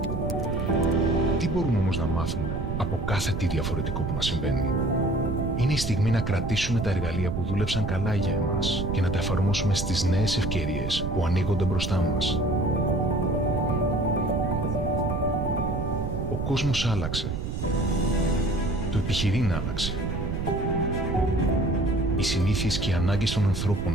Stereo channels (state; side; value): noise; right; rumble, 4 dB below the sound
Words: Τι μπορούμε όμως να μάθουμε από κάθε τι διαφορετικό που μας συμβαίνει? Είναι η στιγμή να κρατήσουμε τα εργαλεία που δούλεψαν καλά για εμάς και να τα εφαρμόσουμε στις νέες ευκαιρίες που ανοίγονται μπροστά μας. Ο κόσμος άλλαξε. Το επιχειρήν άλλαξε. Οι συνήθειες και οι ανάγκες των